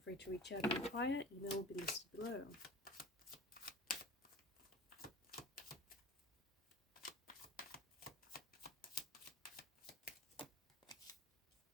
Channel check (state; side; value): normal; both; correlation 0.39